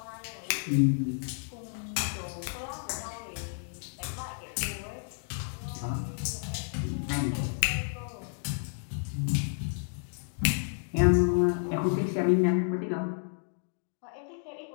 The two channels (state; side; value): silent; right; 57 dB below the other